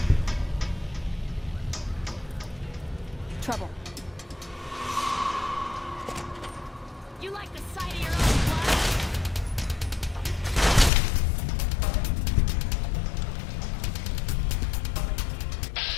Trouble. You like the sight of your own blood?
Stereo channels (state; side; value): drops out; right; at 10.9 s